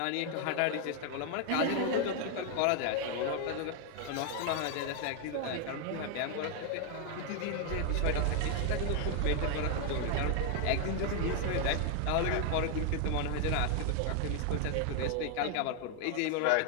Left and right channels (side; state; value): both; different; correlation 0.00